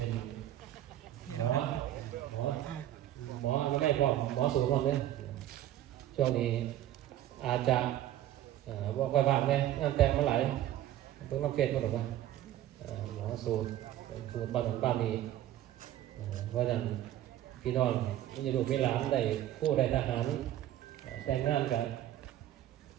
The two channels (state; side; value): quieter; left; 12.8 dB